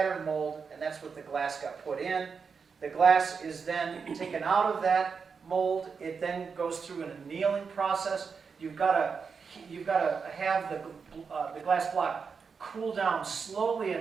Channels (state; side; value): quieter; left; 5.6 dB